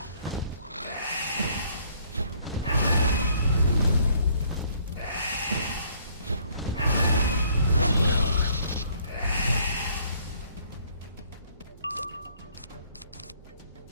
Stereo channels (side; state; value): both; inverted; correlation -0.63